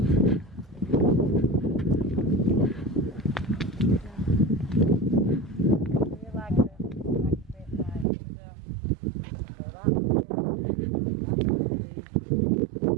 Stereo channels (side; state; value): left; drops out; at 8.1 s